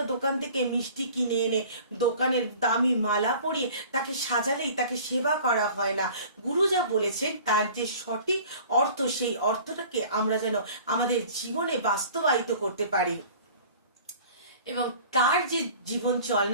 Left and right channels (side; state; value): both; inverted; correlation -0.46